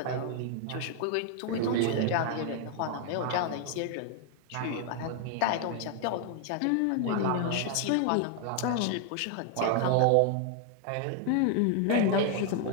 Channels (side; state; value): both; different; correlation 0.00